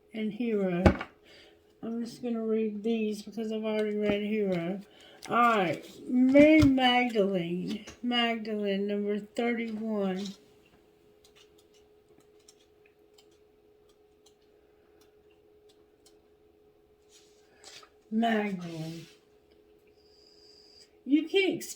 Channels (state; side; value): identical; both; correlation 1.00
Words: and Hero. I'm just going to read these because I've already read Hero. Alright, Mary Magdalene, number 31. Magdalene. You can